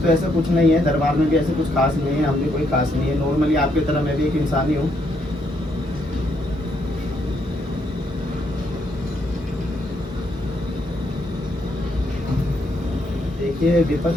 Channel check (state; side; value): normal; both; correlation 0.75